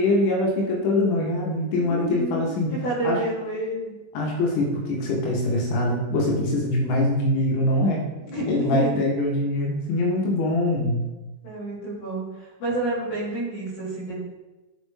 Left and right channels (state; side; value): late; right; 21 ms